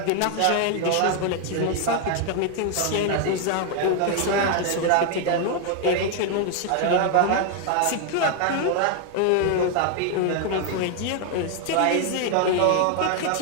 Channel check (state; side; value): different; both; correlation 0.01